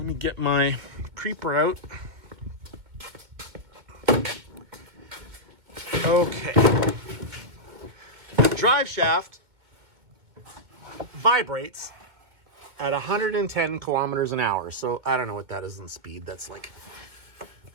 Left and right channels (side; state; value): left; late; 2.2 ms